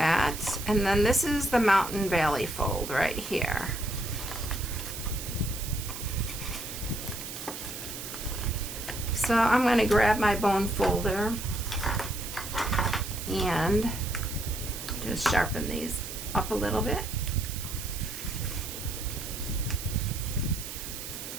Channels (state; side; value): noise; right; hiss, 9 dB below the sound